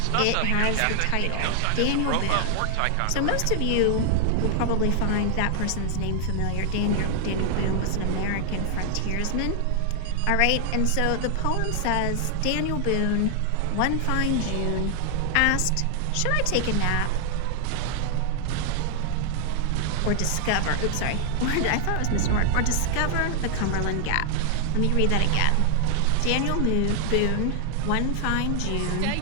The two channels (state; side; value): different; both; correlation 0.00